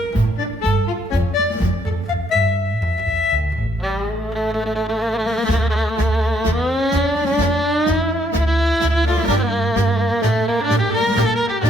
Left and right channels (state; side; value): normal; both; correlation 0.71